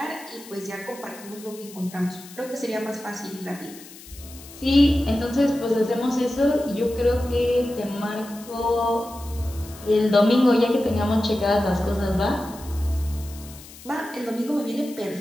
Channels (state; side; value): noise; left; hiss, 18 dB below the sound